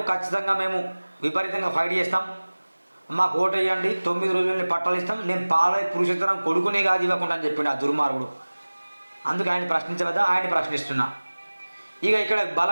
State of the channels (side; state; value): both; inverted; correlation -1.00